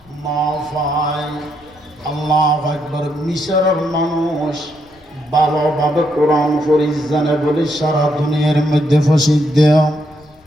পায়। আল্লাহু আকবার। মিশরের মানুষ ভালোভাবে কোরআন শরীফ জানে বলে সারা দুনিয়ার মধ্যে প্রসিদ্ধ,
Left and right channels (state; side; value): noise; left; rumble, 30 dB below the sound